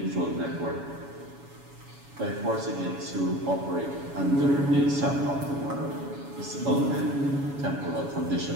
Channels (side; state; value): left; late; 7.1 ms